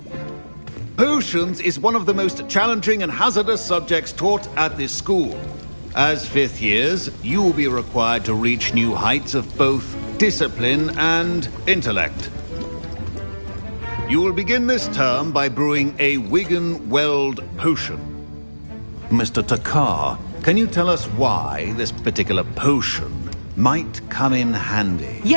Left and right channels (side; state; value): both; inverted; correlation -1.00